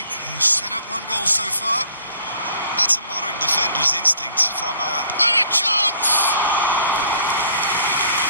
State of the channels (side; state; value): both; inverted; correlation -0.58